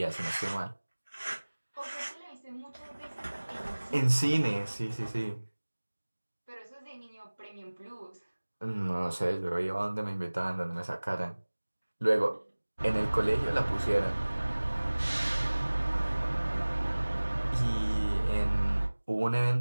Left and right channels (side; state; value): both; inverted; correlation -1.00